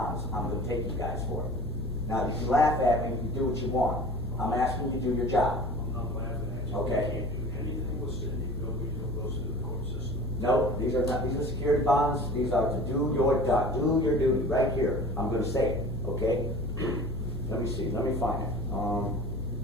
I'm going to take you guys for. Now, you can laugh at me, you can do what you want. I'm asking you to do your job. I'm not laughing at you. Okay. You can't do anything with Cindy Bilbrey until it goes through the court system. No, these are not, these are security bonds. These are to do your job, do your duty right here. I'm going to say it, okay? Let me see, let me find it.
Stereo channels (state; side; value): normal; both; correlation 0.40